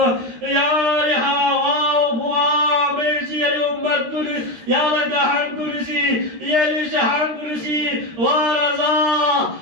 يا رحاوة وفوا ميشي الأمت كنس يا لكحن كنسي يا لشحن كنسي ورزا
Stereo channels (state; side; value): late; left; 13 ms